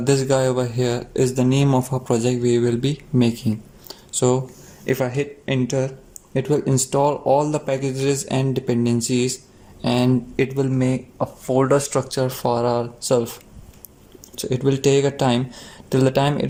guy over here is the name of our project we will be making. So if I hit enter, it will install all the packages and dependencies, and it will make a folder structure for ourselves. So it will take a time. Till the time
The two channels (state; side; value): identical; both; correlation 1.00